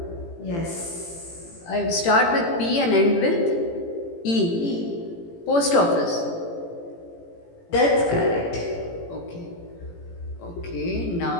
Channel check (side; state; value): right; late; 18 ms